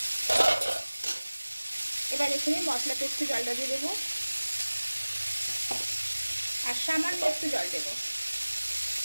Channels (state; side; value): inverted; both; correlation -1.00